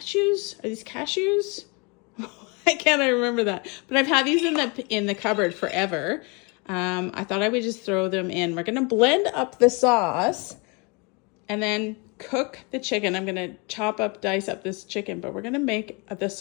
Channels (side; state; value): right; quieter; 30.5 dB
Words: Are these cashews? I can't remember that, but I've had these in the cupboard forever. I thought I would just throw them in. We're gonna blend up the sauce and then cook the chicken. I'm gonna dice up this chicken, but we're gonna make the